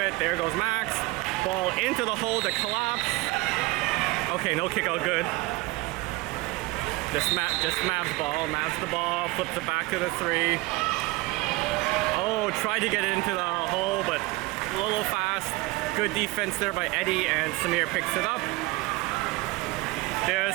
There goes Max. Ball into the hole to collapse. Okay, no kick out, good. Just Mav's ball. Mav's the ball. Flips it back to the 3. Oh, tried to get it into the hole, but a little fast. Good defense there by Eddie, and Samir picks it up.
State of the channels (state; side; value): quieter; left; 21.7 dB